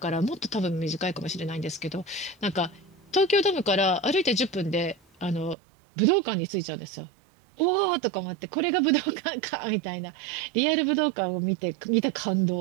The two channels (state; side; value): drops out; left; at 5.6 s